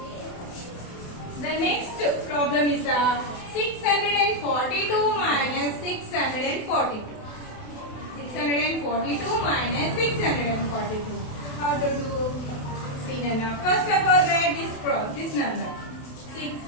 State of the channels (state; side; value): late; right; 28 ms